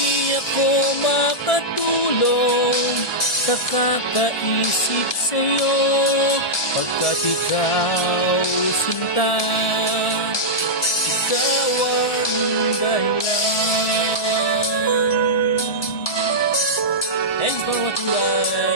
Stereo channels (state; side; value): late; right; 1.7 ms